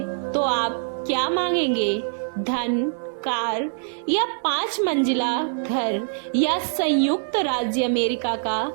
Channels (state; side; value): silent; left; 59 dB below the other